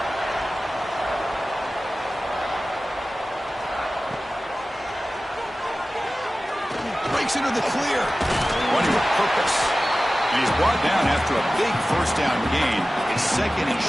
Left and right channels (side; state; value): both; normal; correlation 0.96